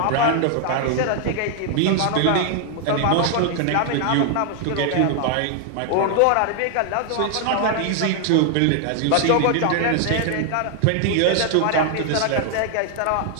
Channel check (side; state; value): both; different; correlation 0.00